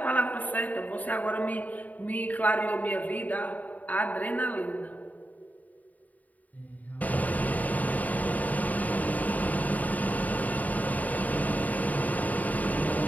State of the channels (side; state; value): right; late; 0.076 ms